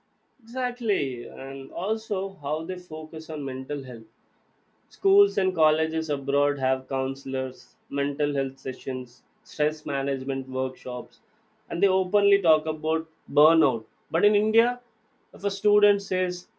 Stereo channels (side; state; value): both; identical; correlation 1.00